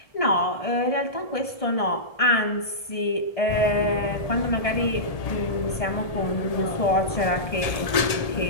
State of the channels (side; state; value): right; late; 1.8 ms